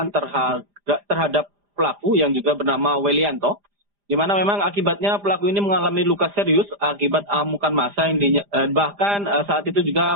terhadap pelaku yang juga bernama Welianto, di mana memang akibatnya pelaku ini mengalami luka serius akibat amukan massa yang bahkan saat itu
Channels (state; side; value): late; left; 5.0 ms